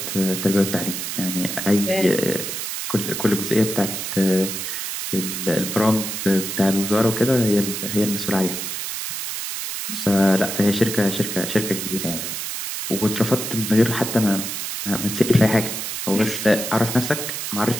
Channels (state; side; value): noise; right; hiss, 5 dB below the sound